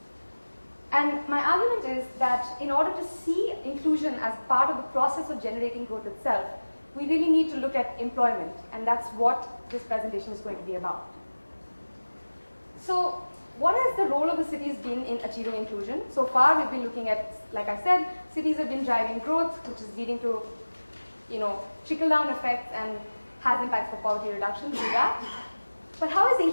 And my argument is that in order to see inclusion as part of the process of generating growth itself, we really need to look at employment, and that's what this presentation is going to be about. So, what has the role of the cities been in achieving inclusion? So far, we've been looking at, like I said, cities have been driving growth, which is leading to, trickle-down effects and has impacts for poverty reduction, do that. But how is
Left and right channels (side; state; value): both; inverted; correlation -1.00